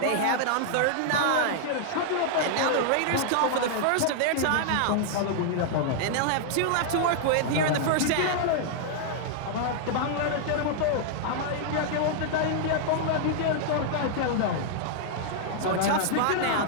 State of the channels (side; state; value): both; different; correlation -0.01